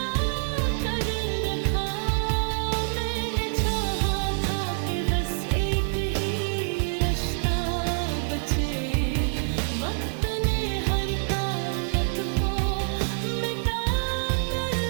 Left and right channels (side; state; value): left; silent; digital silence